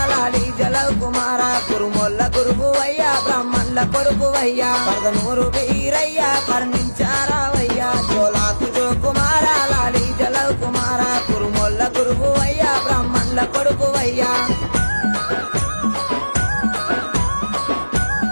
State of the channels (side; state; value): both; inverted; correlation -1.00